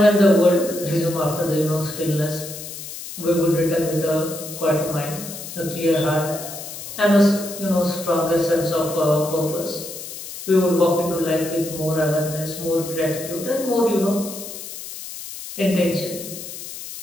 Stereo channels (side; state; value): left; noise; hiss, 11 dB below the sound